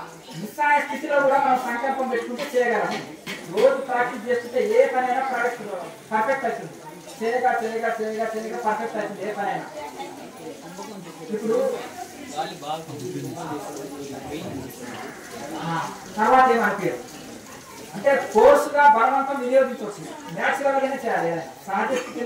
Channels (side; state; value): both; identical; correlation 1.00